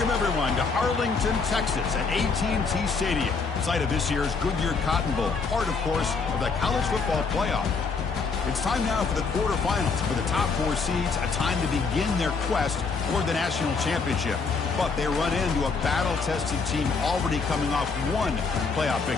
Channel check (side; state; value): right; quieter; 4.8 dB